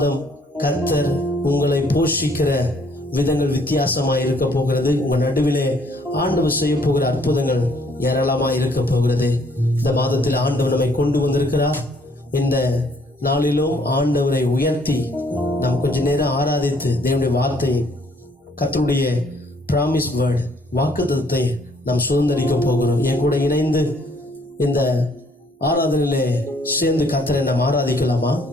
கர்த்தர் உங்களை போஷிக்கிற விதங்கள் வித்தியாசமாய் இருக்க போகிறது. உங்கள் நடுவிலே ஆண்டவர் செய்ய போகிற அற்புதங்கள் ஏராளமாய் இருக்க போகிறது. இந்த மாதத்தில் ஆண்டவர் நம்மை கொண்டு வந்திருக்கிறார். இந்த நாளிலும் ஆண்டவரை உயர்த்தி நாம் கொஞ்ச நேரம் ஆராதித்து தேவனுடைய வார்த்தையை, கர்த்தருடைய பிராமிஸ் வேர்ட், வாக்குத்தத்தத்தை நாம் சுதந்திரிக்க போகிறோம். என் கூட இணைந்து இந்த ஆராதனையிலே சேர்ந்து கர்த்தரை நாம் ஆராதிக்கலாமா?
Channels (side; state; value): both; normal; correlation 0.64